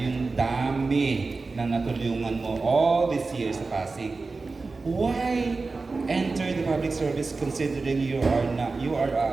dami na natulungan mo all these years sa Pasig. Why enter the public service considering you are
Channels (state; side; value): quieter; left; 3.9 dB